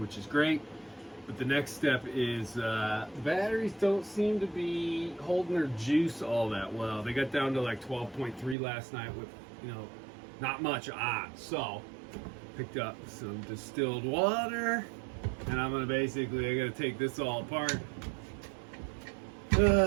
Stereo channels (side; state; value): left; drops out; at 8.6 s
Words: is great, but the next step is the batteries don't seem to be holding their juice all that well. They got down to like 12.3 last night with, you know, not much on. So picked up some distilled water, and I'm gonna basically, I gotta take this all apart